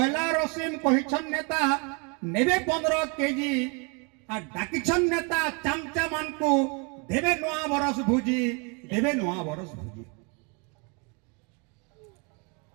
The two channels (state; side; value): quieter; left; 33.3 dB